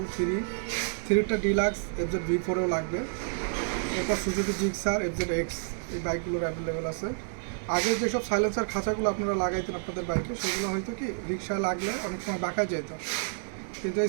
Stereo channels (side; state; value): left; silent; 58 dB below the other